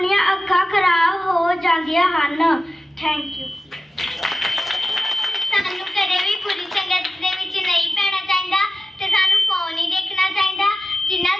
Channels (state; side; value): normal; both; correlation 0.94